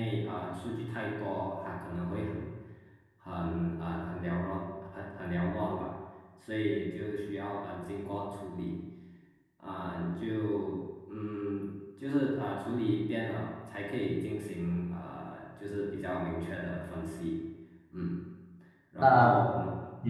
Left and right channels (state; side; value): identical; both; correlation 1.00